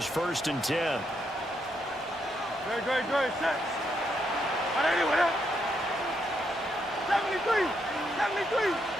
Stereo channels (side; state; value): both; normal; correlation 0.78